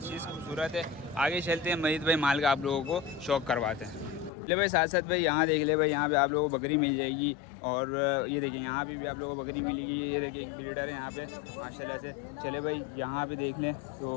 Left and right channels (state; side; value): drops out; right; at 4.3 s